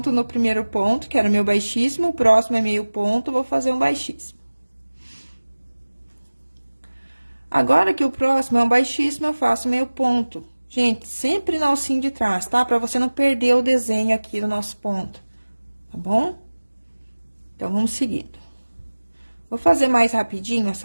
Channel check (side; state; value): both; inverted; correlation -1.00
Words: no primeiro ponto, que era o meu baixíssimo, o próximo é meio ponto, vou fazer um baixíssimo. Agora que o próximo é um baixíssimo, eu faço meio ponto. Gente, sempre na alcinha de trás, tá? Pra você não perder o desenho aqui do nosso ponto, tá bom? Então, vamos seguindo. Vou fazer mais rapidinho